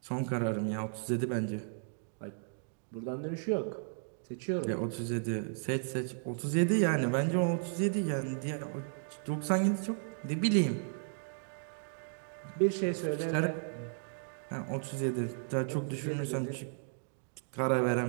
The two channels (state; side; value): silent; left; digital silence